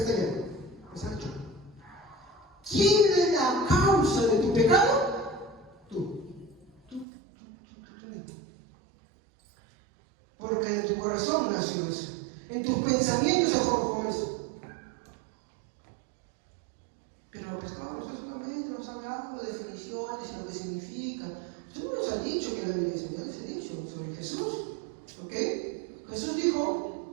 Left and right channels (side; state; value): left; drops out; at 7.1 s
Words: allá. Es Sancho. ¿Quién es la causa de tu pecado? Tú. Porque en tu corazón nació eso. En tus pensamientos se forjó eso. Pero pues no, usted solamente nos ha hablado de definiciones y lo que significa. Usted no nos ha dicho que la Biblia es, ya les he dicho sobre Jesús. ¿Ok? Jesús